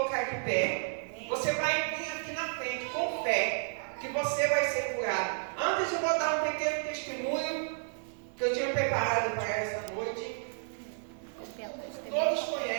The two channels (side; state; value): left; silent; 56 dB below the other